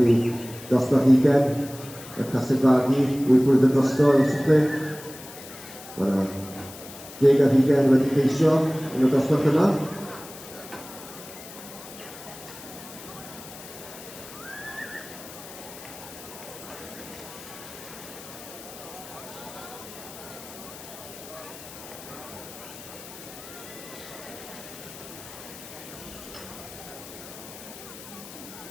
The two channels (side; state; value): left; noise; hiss, 15 dB below the sound